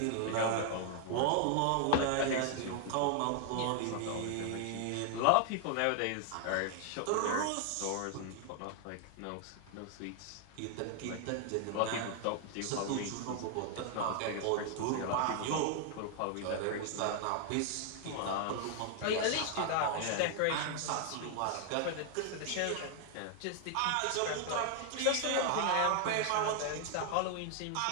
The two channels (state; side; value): different; both; correlation 0.00